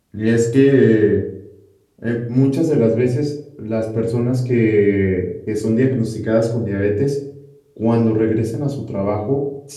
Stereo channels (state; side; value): identical; both; correlation 1.00